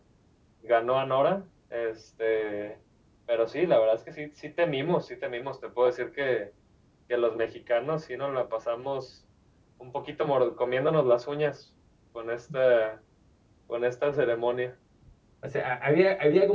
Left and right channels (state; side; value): identical; both; correlation 1.00